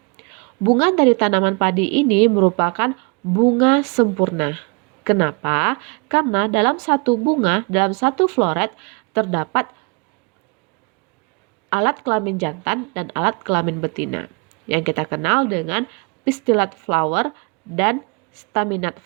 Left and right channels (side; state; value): left; quieter; 32.7 dB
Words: Bunga dari tanaman padi ini merupakan bunga sempurna. Kenapa? Karena dalam satu bunga, dalam satu floret, terdapat alat kelamin jantan dan alat kelamin betina, yang kita kenal dengan pistillate flower dan staminate